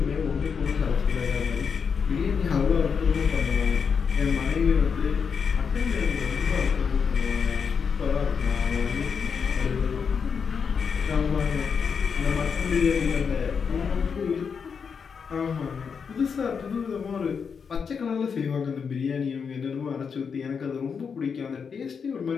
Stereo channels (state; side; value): quieter; right; 6.2 dB